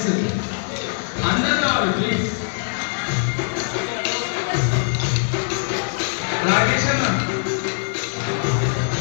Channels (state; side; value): silent; right; 64 dB below the other